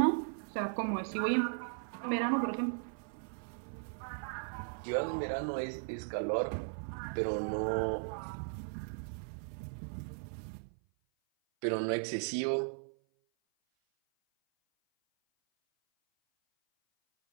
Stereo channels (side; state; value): left; silent; 53 dB below the other